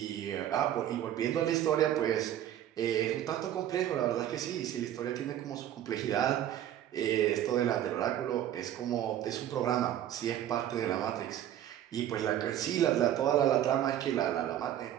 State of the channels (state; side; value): quieter; left; 11.5 dB